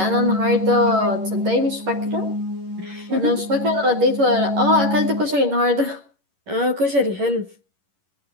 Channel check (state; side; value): late; left; 11 ms